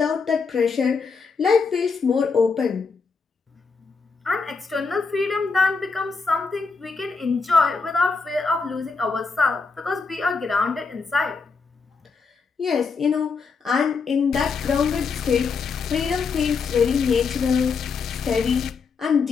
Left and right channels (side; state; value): right; quieter; 4.9 dB